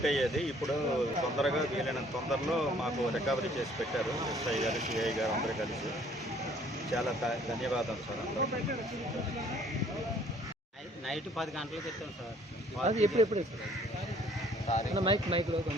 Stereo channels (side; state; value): both; normal; correlation 0.59